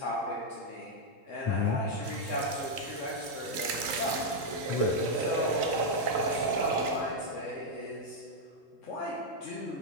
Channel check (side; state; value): left; late; 3.9 ms